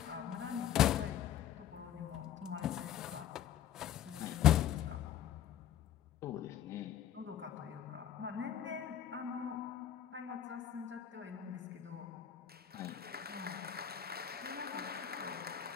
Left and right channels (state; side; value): quieter; right; 10.3 dB